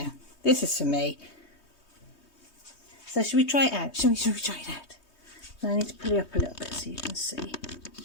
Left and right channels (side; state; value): right; late; 3.2 ms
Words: This is for me. So should we try it out? Should we try it out? I need to pull it up a little bit so you can see.